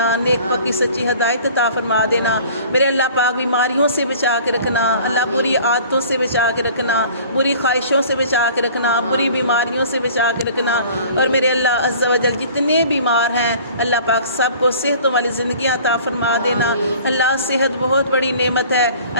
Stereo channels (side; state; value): both; inverted; correlation -0.48